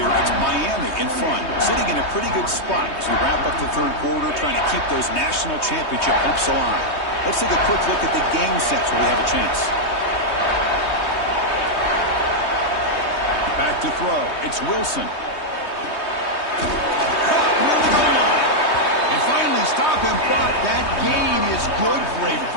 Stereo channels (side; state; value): right; late; 3.2 ms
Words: it's Miami in front, sitting in a pretty good spot as we wrap up the third quarter, trying to keep those national championship hopes alive. Let's take a quick look at the game sets where we have a chance. Back to throw. It's Wilson. Caught near the goal line. And finally stop him, but that gain is good for a